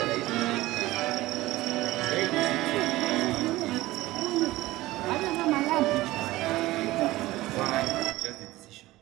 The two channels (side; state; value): left; quieter; 17.9 dB